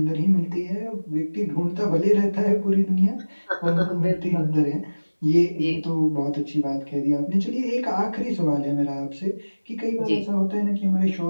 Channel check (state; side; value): inverted; both; correlation -1.00